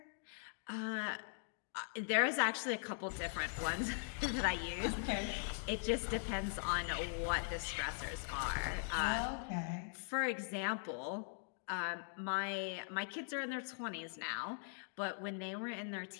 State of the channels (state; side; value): silent; right; digital silence